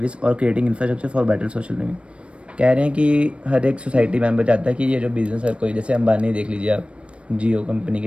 or creating infrastructure for better social living। कह रहे हैं कि हर एक society member चाहता है कि ये जो बिज़नेस है, कोई जैसे अंबानी देख लीजिए आप, जियो कंपनी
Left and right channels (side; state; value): left; late; 0.059 ms